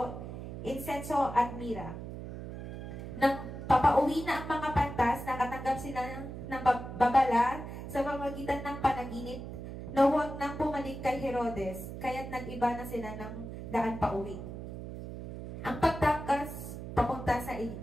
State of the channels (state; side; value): noise; right; hum, 9 dB below the sound